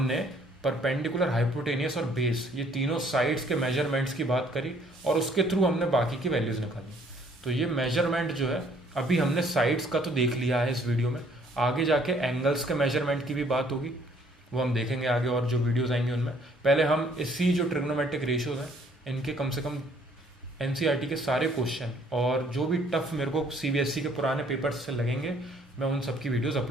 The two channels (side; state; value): both; normal; correlation 0.62